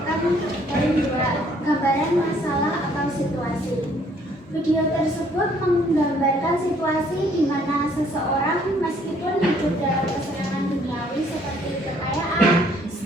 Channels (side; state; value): both; normal; correlation 0.63